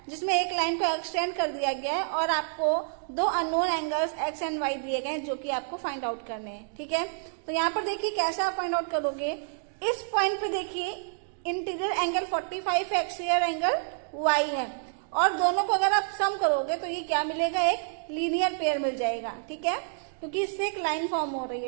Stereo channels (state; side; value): silent; left; digital silence